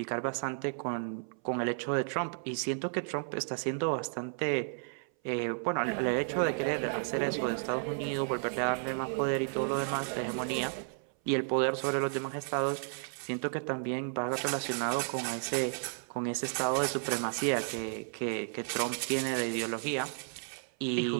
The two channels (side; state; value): left; silent; 56 dB below the other